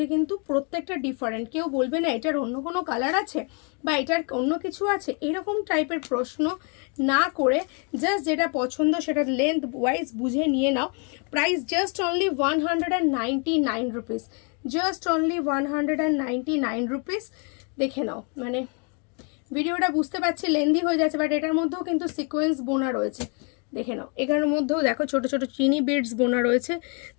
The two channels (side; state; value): right; quieter; 37.3 dB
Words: কিন্তু প্রত্যেকটা ডিফারেন্ট। কেউ বলবে না এটার অন্য কোনো কালার আছে বা এটার অন্য কিছু আছে, এরকম টাইপের প্রশ্ন না করে জাস্ট যেটা পছন্দ সেটা লেন্থ ওয়াইজ বুঝে নিয়ে নাও। Price just only 199 rupees, just only 199 rupees. দেখে নাও, মানে ভিডিওটা বুঝতে পারছি লেন্দি হয়ে যাচ্ছে, বাট এটার মধ্যেও কিন্তু সিকোয়েন্স বোনা রয়েছে। দেখে নাও, এখানের মধ্যেও দেখো ছোট ছোট চিনি বিডস বোনা রয়েছে,